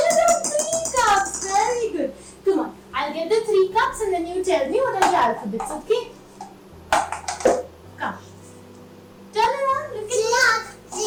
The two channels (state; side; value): identical; both; correlation 1.00